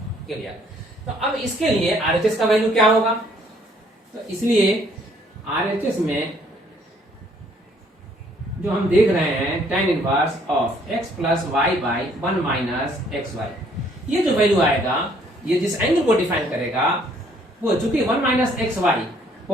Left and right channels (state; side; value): normal; both; correlation 0.63